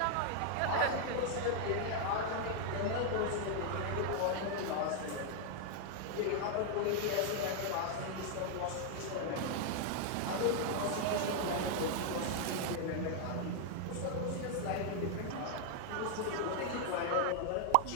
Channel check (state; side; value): different; both; correlation 0.00